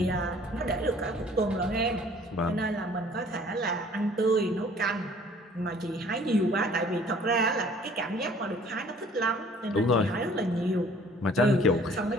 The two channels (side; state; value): both; normal; correlation 0.54